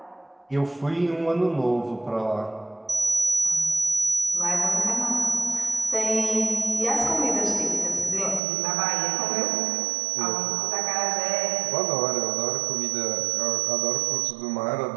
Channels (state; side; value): drops out; left; at 8.4 s